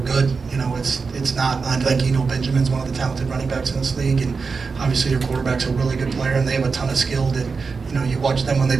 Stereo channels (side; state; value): left; quieter; 4.8 dB